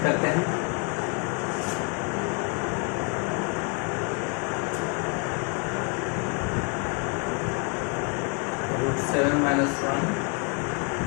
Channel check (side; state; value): right; quieter; 36.8 dB